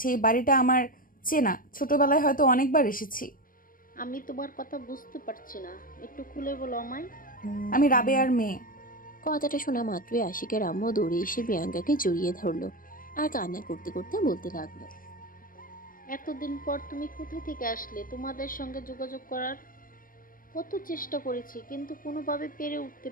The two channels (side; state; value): right; late; 0.40 ms